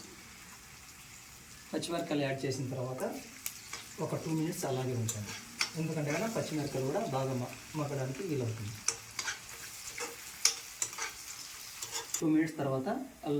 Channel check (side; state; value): both; identical; correlation 1.00